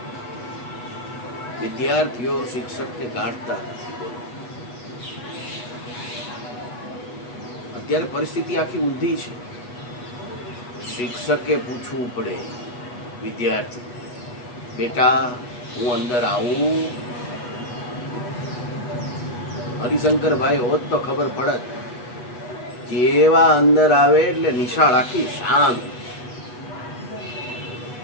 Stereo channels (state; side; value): late; right; 8.2 ms